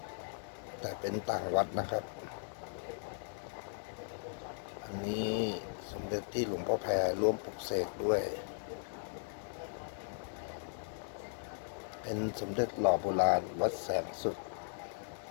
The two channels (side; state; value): right; silent; digital silence